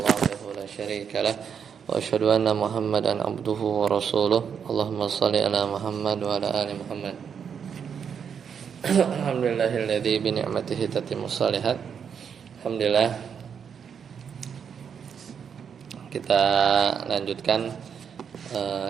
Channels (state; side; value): quieter; left; 7.2 dB